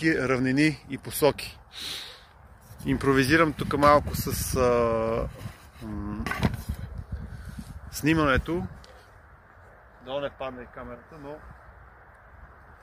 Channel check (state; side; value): identical; both; correlation 1.00